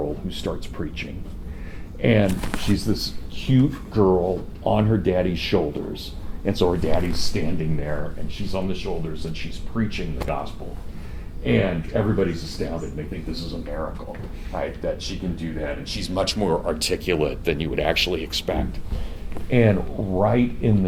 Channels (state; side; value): identical; both; correlation 1.00